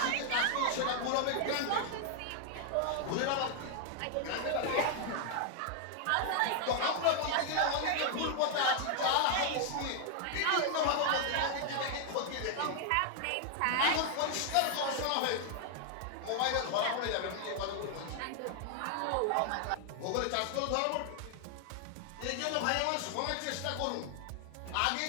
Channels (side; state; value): both; different; correlation 0.00